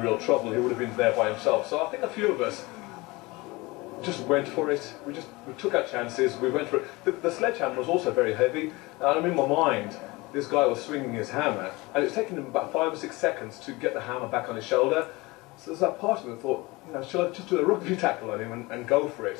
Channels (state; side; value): quieter; right; 23.0 dB